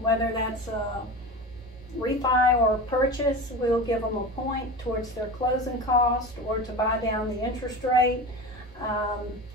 that's a refi or a purchase. We'll give them a point towards their closing cost or to buy down the interest rate.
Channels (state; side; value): normal; both; correlation 0.29